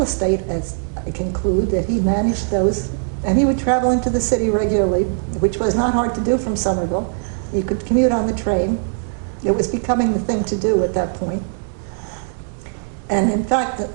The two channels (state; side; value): silent; left; digital silence